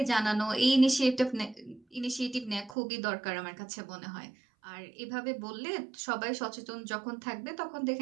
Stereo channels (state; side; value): drops out; left; at 2.8 s